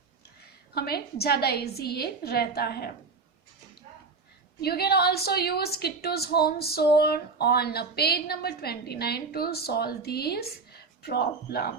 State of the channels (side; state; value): left; quieter; 4.4 dB